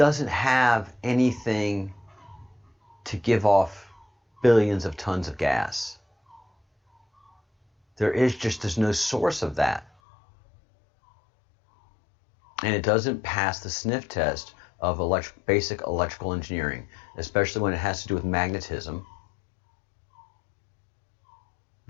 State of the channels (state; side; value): drops out; right; at 9.9 s